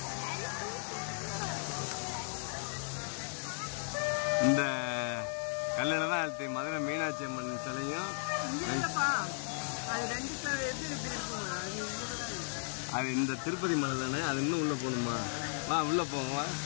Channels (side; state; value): right; silent; digital silence